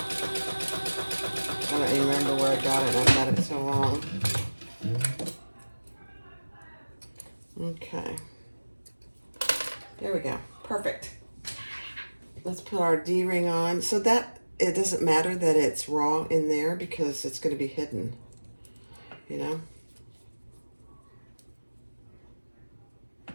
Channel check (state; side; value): inverted; both; correlation -1.00